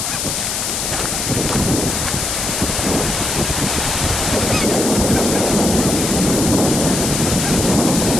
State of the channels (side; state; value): left; noise; hiss, 2 dB below the sound